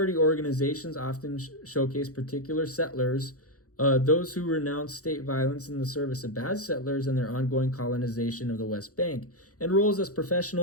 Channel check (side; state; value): right; late; 0.66 ms